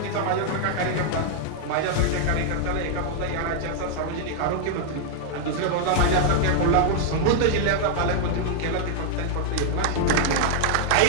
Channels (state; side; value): different; both; correlation -0.01